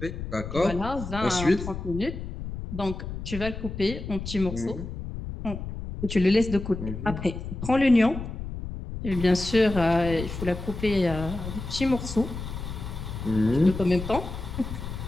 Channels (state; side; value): noise; left; rumble, 7 dB below the sound